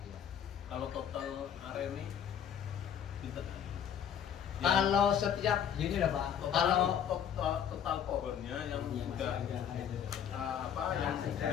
Kalau total area ini pinter. Kalau setiap gini lah Pak. Kalau total pohonnya yang sudah yang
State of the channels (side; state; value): right; quieter; 8.8 dB